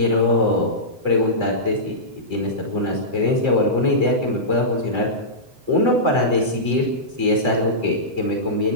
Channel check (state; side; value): late; left; 7.9 ms